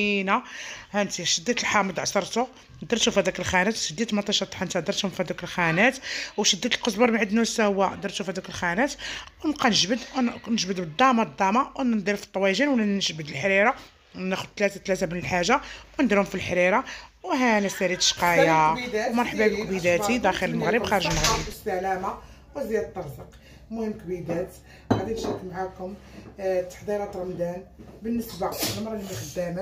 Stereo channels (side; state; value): both; identical; correlation 1.00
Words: ها انت شديت الحامض عصرته درتو في هذاك الخانات، شديت مطيشه طحنتها درتهم في هذوك الخانات، وشديت القزبر معدنوس هو درتو في هذوك الخانات، ونبقى نجبد بالضامه وندير في الطواجن ولا نجبد الحريره، ناخذ ثلاثه من الحاجه ونديرهم في الحريره. وهانا ساليت شقايه ومرحبا بك كبيداتي داخل المغرب خارج المغرب بالسلامه وزياد الطرزق. المهم كبيدات غادي نشارك معكم تحضيرات رمضان بالنسبه للمراه اللي ما